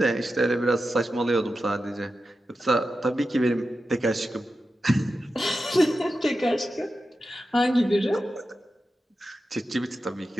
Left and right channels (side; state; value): both; normal; correlation 0.91